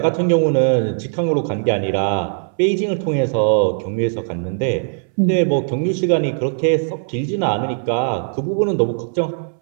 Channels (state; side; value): silent; left; 65 dB below the other